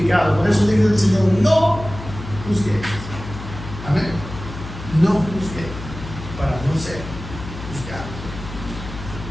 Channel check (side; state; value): left; noise; hum, 11 dB below the sound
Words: Por eso dice el Señor, no juzguéis. Amén. No juzguéis, para no ser juzgados.